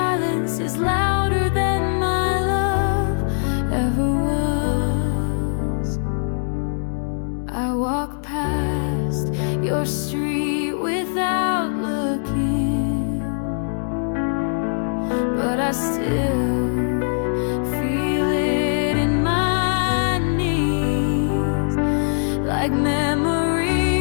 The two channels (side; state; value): right; silent; 65 dB below the other